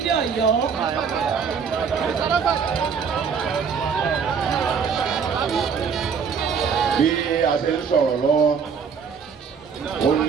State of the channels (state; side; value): quieter; left; 6.3 dB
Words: Ọ̀yọ́. Bí a ṣe ń sọ̀rọ̀ lọ́wọ́, ó